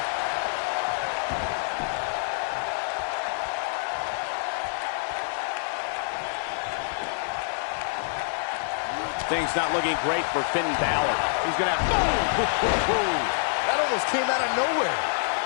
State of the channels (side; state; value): right; silent; digital silence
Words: Things not looking great for Finn Balor. He's going to have... Oh! That almost came out of nowhere.